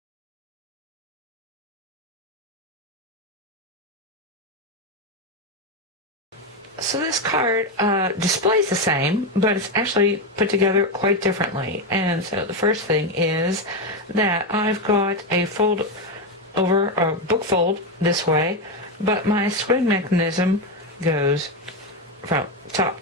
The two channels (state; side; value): normal; both; correlation 0.10